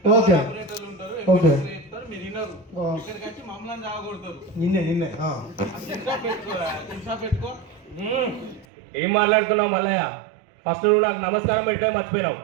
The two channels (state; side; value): drops out; left; at 8.7 s